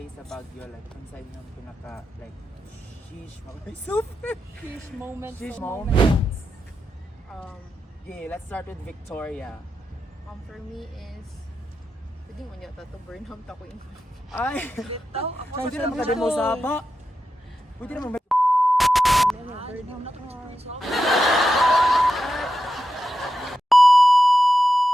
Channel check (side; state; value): both; normal; correlation 0.89